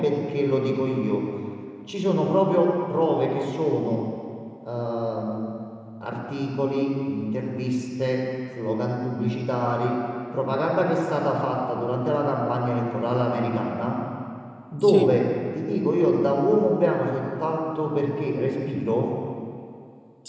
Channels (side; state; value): both; identical; correlation 1.00